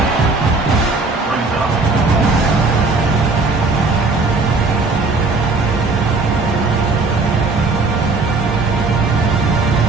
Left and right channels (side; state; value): left; quieter; 3.7 dB